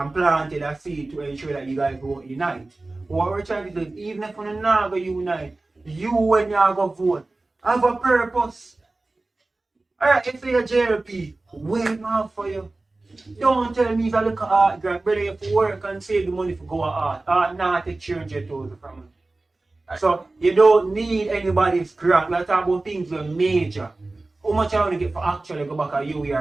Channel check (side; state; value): left; quieter; 3.1 dB